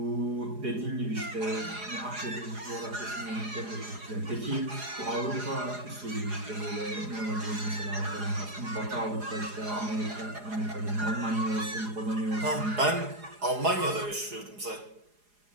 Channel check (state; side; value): late; left; 4.8 ms